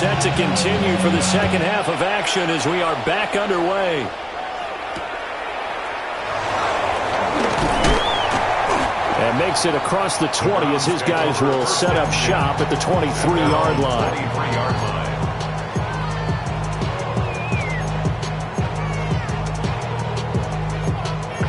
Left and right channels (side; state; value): both; identical; correlation 1.00